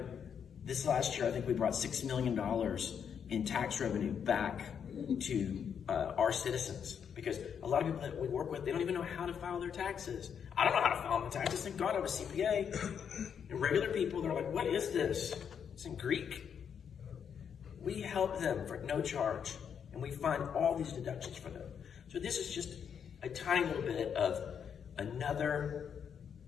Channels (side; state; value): right; quieter; 7.6 dB